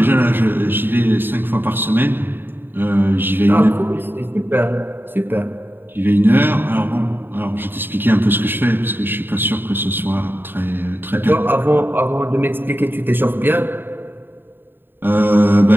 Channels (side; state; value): left; late; 0.097 ms